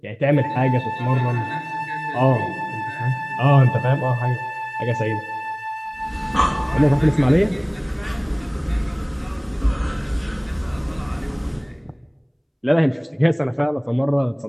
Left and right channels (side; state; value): both; identical; correlation 1.00